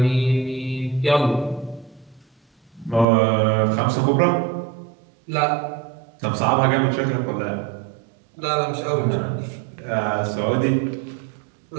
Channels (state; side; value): drops out; left; at 3.1 s